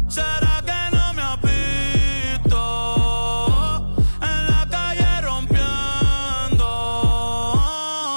¿Será que no me has visto? En la calle rompiendo.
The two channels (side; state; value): both; inverted; correlation -1.00